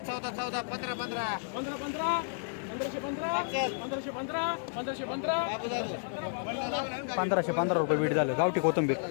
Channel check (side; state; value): right; silent; digital silence